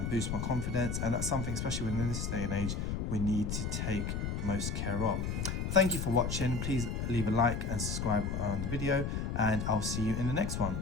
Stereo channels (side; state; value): left; noise; rumble, 2 dB below the sound